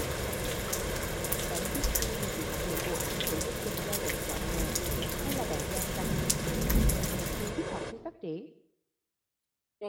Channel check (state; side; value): identical; both; correlation 1.00